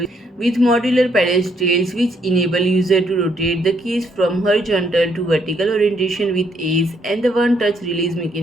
with modular pedestals which enable user to rotate the case from horizontal to vertical orientation with ease, and the one touch release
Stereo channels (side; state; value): both; normal; correlation 0.71